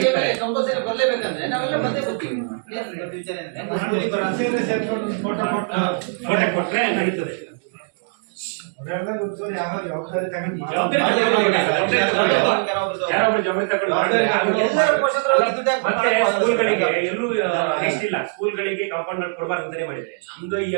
ಸಿಗ್ತಾರೆ. ಕಂಪಲ್ಸರಿ ಬರ್ಲೇಬೇಕಂದ್ರೆ ನಾವೆಲ್ಲ ಬಂದೇ ಬರ್ತೀವಿ. ವಿಚಾರ ಫೋಟೋ ಕೊಟ್ರೆ ನಡೀತದೆ. ಜವಾಬ್ದಾರಿ ಜವಾಬ್ದಾರಿ ಯಾರೊಬ್ರು ಜವಾಬ್ದಾರಿ ತಗೊಂಡು ಮಾಡಿದ್ರೆ ಮತ್ತೆ ಸ್ಕೂಲ್ಗಳಿಗೆ ಎಲ್ಲೂ ನೆಕ್ಸ್ಟ್ ಇಲ್ಲ, ಸ್ಕೂಲ್ಗಳಿಗೆ ಕಾಂಪೌಂಡ್ ಕೊಡಬಾರ್ದು ಅಂತಾನೆ ಮಾಡಿದ್ರೆ. ನಮ್ದು ಈ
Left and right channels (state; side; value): silent; left; digital silence